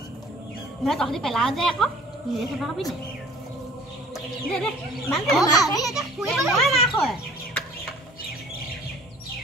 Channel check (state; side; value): normal; both; correlation 0.50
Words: নহয় তহঁতি পেলাও যে আকৌ নিজে চাফা খাবি নাই দে দে মান